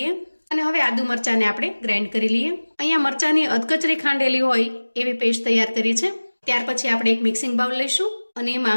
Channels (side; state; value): both; inverted; correlation -1.00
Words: અને હવે આદુ મરચાંને આપણે ગ્રાઇન્ડ કરી લઈએ. અહીંયા મરચાંની અધકચરી ખાંડેલી હોય એવી પેસ્ટ તૈયાર કરી છે. ત્યાર પછી આપણે એક મિક્સિંગ બાઉલ લઈશું અને